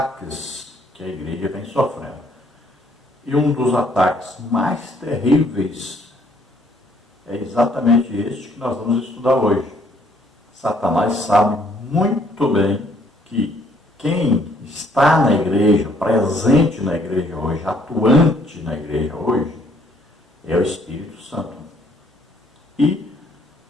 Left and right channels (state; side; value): normal; both; correlation 0.65